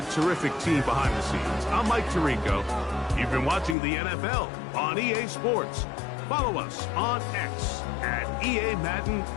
terrific team behind the scenes, I'm Mike Tirico. You've been watching the NFL on EA Sports. Follow us on X at EA Madden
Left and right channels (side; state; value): right; drops out; at 3.8 s